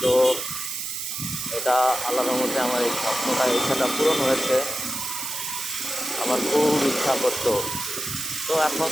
তো এটা আল্লাহর মধ্যে আমার এই স্বপ্নটা, ইচ্ছাটা পূরণ হয়েছে। আমার খুব ইচ্ছা করতো। তো এখন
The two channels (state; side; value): noise; right; hiss, 5 dB below the sound